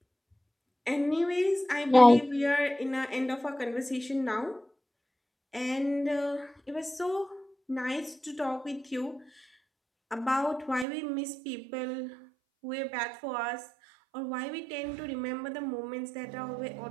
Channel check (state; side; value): drops out; left; at 10.9 s